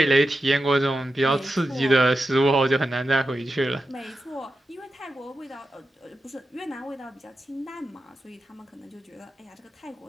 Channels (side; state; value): both; normal; correlation 0.90